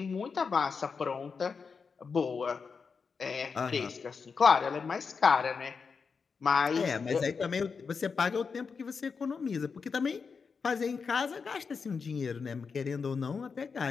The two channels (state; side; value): quieter; right; 5.4 dB